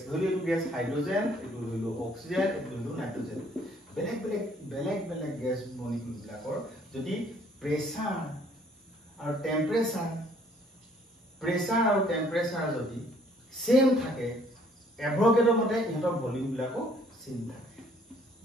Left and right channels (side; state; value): both; normal; correlation 0.61